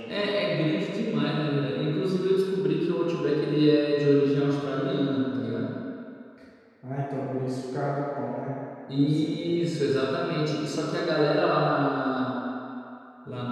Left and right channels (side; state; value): both; identical; correlation 1.00